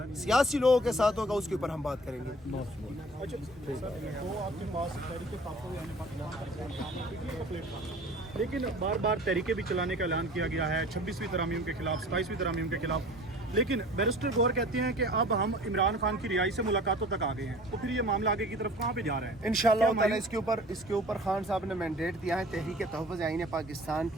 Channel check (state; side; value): normal; both; correlation 0.46